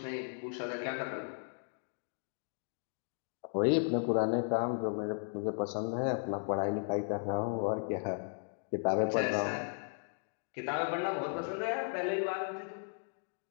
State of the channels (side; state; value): right; silent; 54 dB below the other